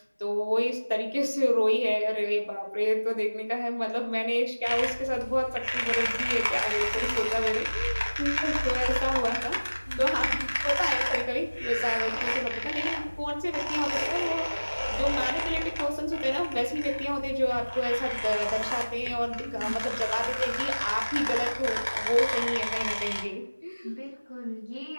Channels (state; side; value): inverted; both; correlation -1.00